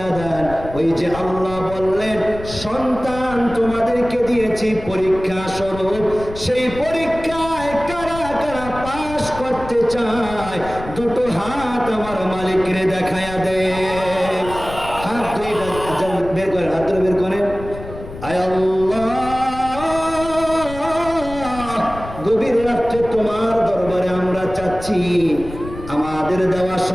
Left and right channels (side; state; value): left; noise; rumble, 12 dB below the sound